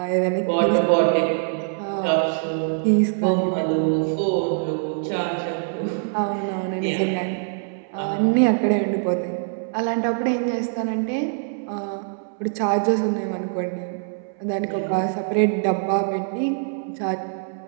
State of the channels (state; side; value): silent; left; 63 dB below the other